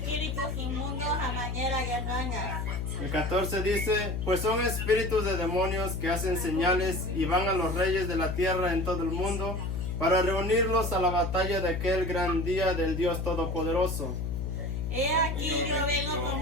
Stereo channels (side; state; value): left; noise; hum, 2 dB below the sound